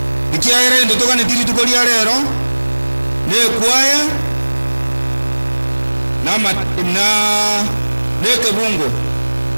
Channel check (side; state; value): both; inverted; correlation -1.00